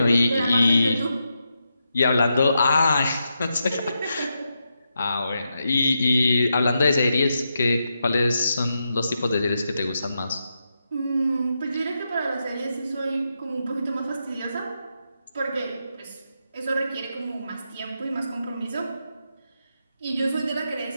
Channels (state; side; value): inverted; both; correlation -0.85